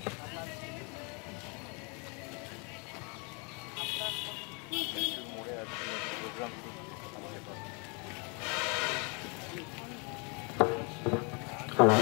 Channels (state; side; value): quieter; right; 33.1 dB